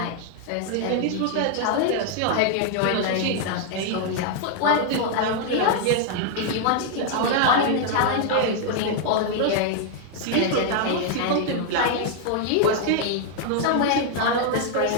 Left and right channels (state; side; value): different; both; correlation 0.00